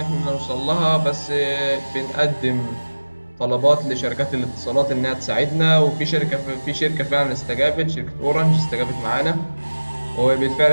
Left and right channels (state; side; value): inverted; both; correlation -1.00